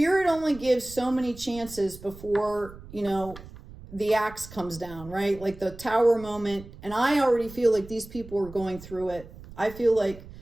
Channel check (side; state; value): right; noise; rumble, 17 dB below the sound